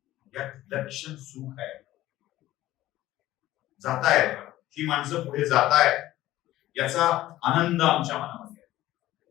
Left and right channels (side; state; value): right; quieter; 15.2 dB